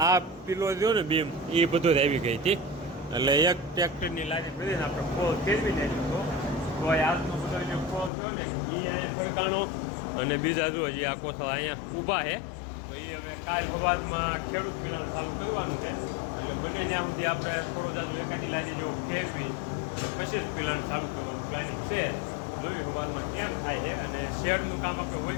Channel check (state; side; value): drops out; right; at 8.1 s